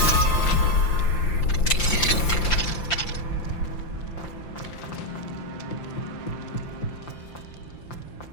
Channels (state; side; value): late; right; 5.8 ms